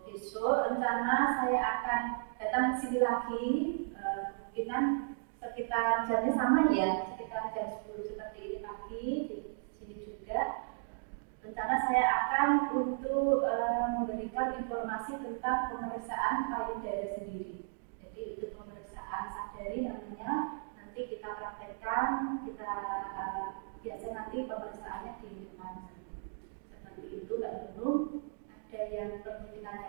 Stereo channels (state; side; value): silent; left; digital silence